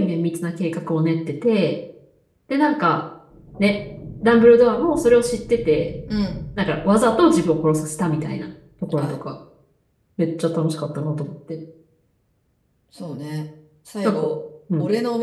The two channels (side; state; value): both; identical; correlation 1.00